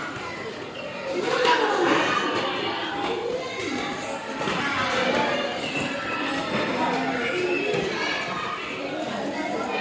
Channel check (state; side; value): identical; both; correlation 1.00